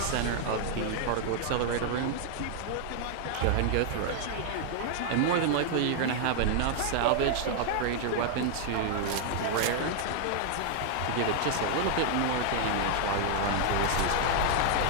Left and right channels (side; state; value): both; different; correlation 0.00